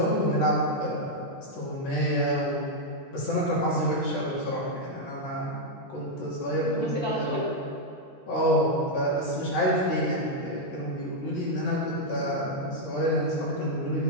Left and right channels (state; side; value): late; right; 8.3 ms